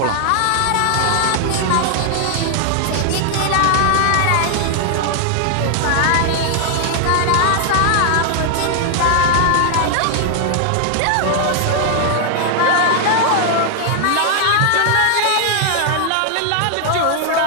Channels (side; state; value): both; different; correlation 0.00